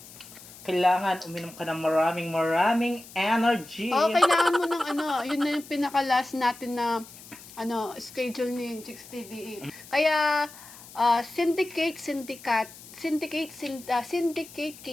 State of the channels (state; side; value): noise; left; hiss, 18 dB below the sound